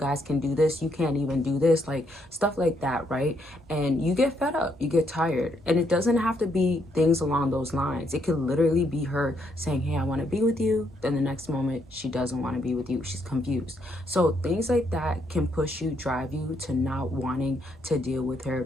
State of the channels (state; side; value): normal; both; correlation 0.74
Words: can do this, you can't even do this, like stuff like that, right? And you get fed up, you get tired. And it doesn't have to be things along those lines. It could literally be her saying, hey, I want to be with you. Then the next moment she doesn't want to be with you. She's confused. So things like that can push you, drive you to not wanting to deal with